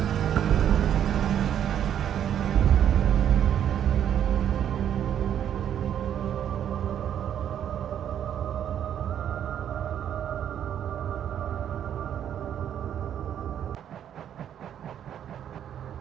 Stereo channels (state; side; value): quieter; left; 9.7 dB